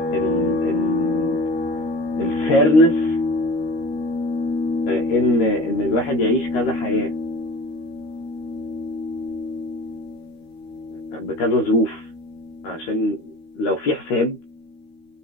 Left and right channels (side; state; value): right; late; 13 ms